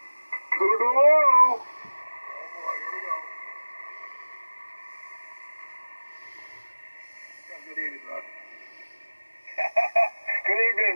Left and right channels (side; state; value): both; inverted; correlation -1.00